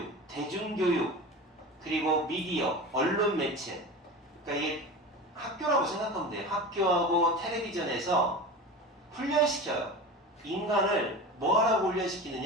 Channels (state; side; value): normal; both; correlation 0.30